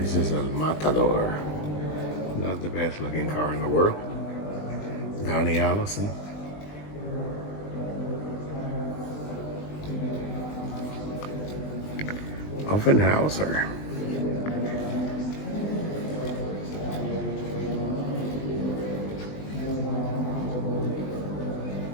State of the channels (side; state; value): right; late; 20 ms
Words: is a Matador. Not the best looking car in the world. Donnie Allison. Offenhauser.